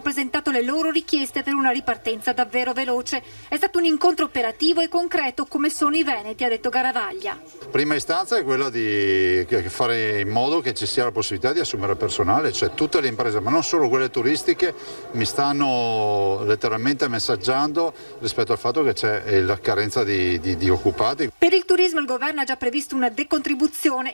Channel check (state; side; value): inverted; both; correlation -1.00